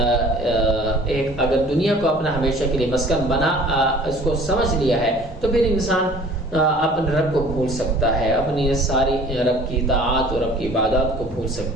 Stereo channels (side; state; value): both; normal; correlation 0.49